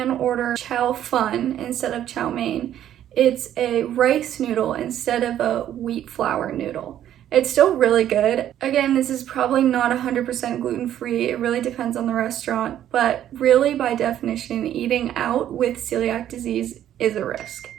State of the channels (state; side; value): quieter; left; 11.3 dB